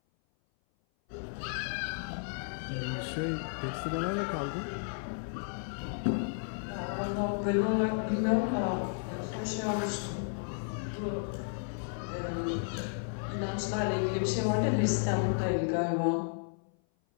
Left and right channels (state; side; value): silent; right; 56 dB below the other